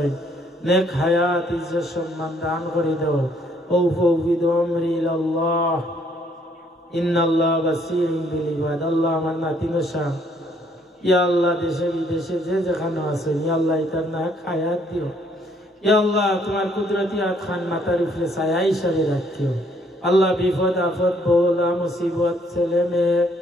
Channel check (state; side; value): normal; both; correlation 0.66